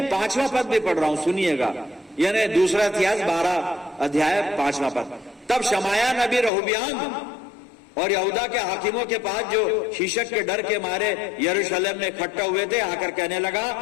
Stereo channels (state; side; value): drops out; right; at 6.5 s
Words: 5वां पद भी पढ़ रहा हूं, सुनिएगा, यानी दूसरा इतिहास 12 अध्याय 5वां पद। तब शमाया नबी रहोबियाम और यहूदा के हाकिमों के पास जो शीशक के डर के मारे यरूशलेम में इकट्ठा हुए थे आकर कहने